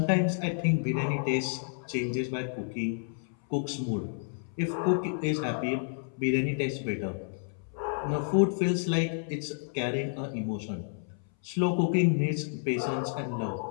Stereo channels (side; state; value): right; silent; 58 dB below the other